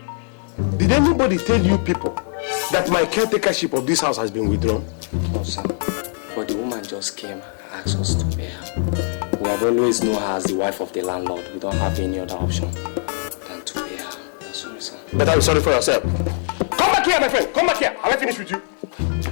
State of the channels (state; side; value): silent; right; digital silence